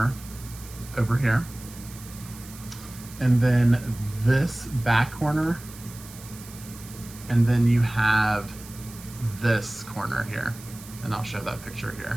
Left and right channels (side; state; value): right; noise; hiss, 17 dB below the sound